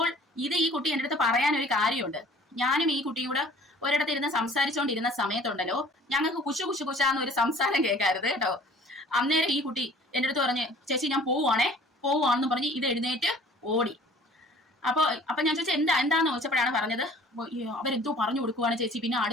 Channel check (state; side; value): normal; both; correlation 0.51